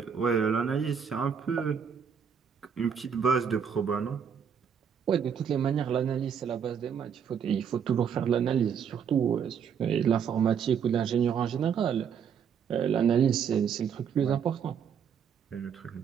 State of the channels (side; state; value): left; quieter; 7.4 dB